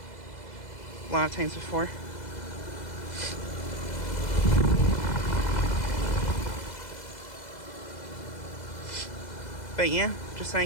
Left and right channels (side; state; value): right; late; 2.0 ms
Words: a lot of times before. But yeah, just